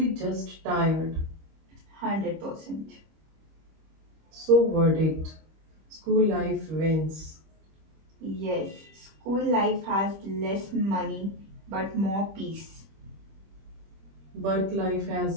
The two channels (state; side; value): late; left; 25 ms